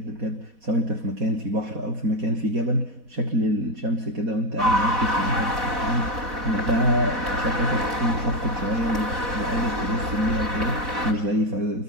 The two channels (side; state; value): left; late; 4.1 ms